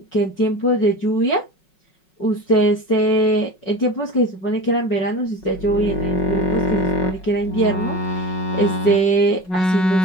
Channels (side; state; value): right; late; 5.4 ms